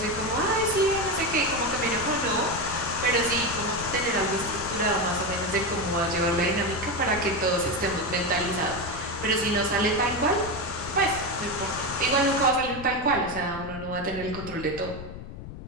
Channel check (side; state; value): left; noise; rumble, 12 dB below the sound